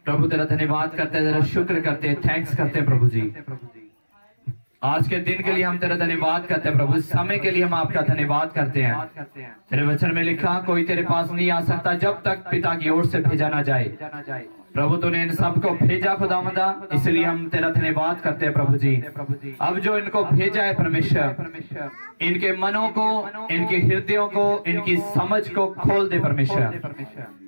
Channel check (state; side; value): inverted; both; correlation -1.00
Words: प्रभु तेरा धन्यवाद करते हैं, तेरा शुक्र करते हैं, थैंक्स करते हैं प्रभु जी। आज के दिन के लिए हम तेरा धन्यवाद करते हैं प्रभु, इस समय के लिए हम आपका धन्यवाद करते हैं। तेरे वचन में लिखा कोई तेरे पास नहीं आ सकता जब तक पिता की ओर से भेजा ना जाए। प्रभु तूने इन सबको भेजा खुदावंदा, इसलिए हम तेरा धन्यवाद करते हैं प्रभु जी। अब जो इनको भेजा है परमेश्वर, इनके मनों को, इनके हृदयों को, इनकी समझ को खोल दे परमेश्वर।